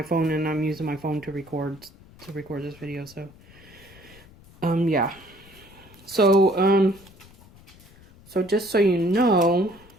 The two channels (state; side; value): noise; left; rumble, 24 dB below the sound